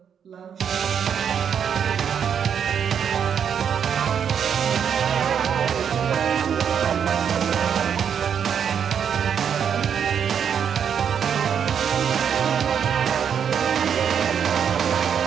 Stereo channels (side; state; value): left; quieter; 7.8 dB